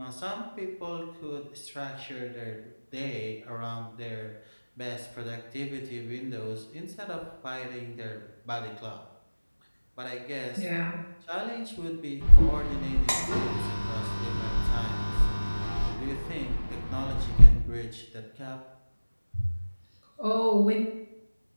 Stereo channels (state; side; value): inverted; both; correlation -1.00